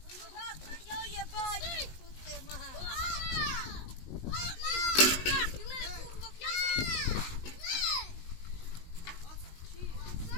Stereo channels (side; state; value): right; late; 19 ms